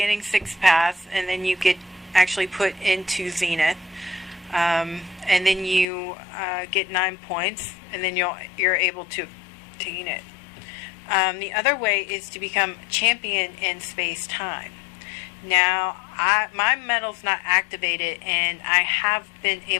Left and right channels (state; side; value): drops out; right; at 5.9 s